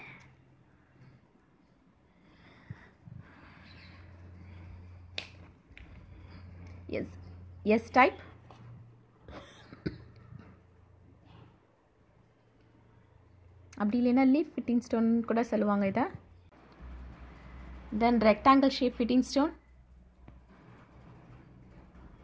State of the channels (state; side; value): identical; both; correlation 1.00